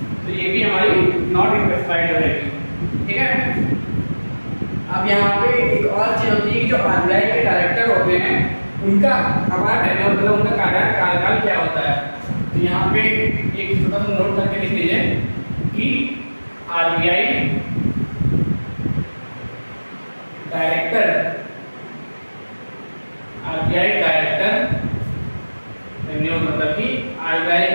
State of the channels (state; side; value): inverted; both; correlation -1.00